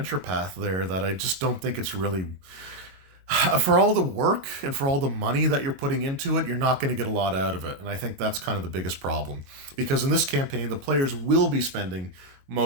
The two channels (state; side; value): late; left; 22 ms